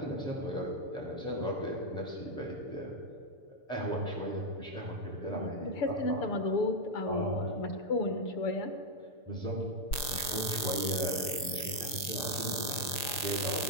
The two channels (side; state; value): right; late; 6.6 ms